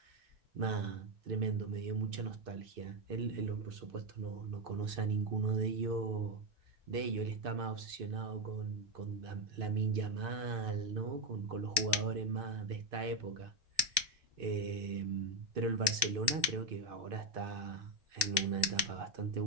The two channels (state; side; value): late; left; 1.1 ms